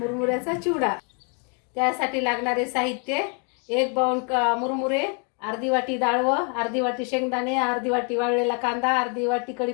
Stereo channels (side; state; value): right; quieter; 38.6 dB